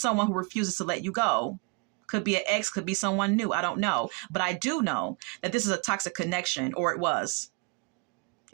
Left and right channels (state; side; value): quieter; left; 31.3 dB